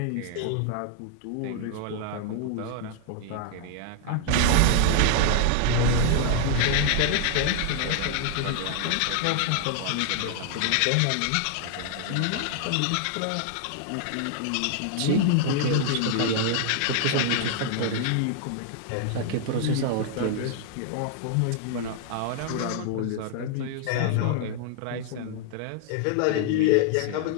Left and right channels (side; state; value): both; different; correlation 0.00